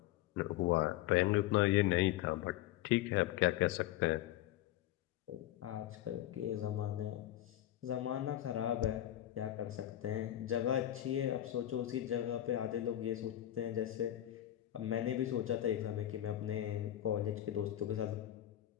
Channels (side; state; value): right; quieter; 13.2 dB